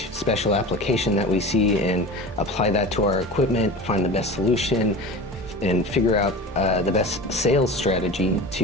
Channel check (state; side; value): normal; both; correlation 0.33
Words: special application that we see and apply that to our equipment, find the best solution, figure out the best sales strategy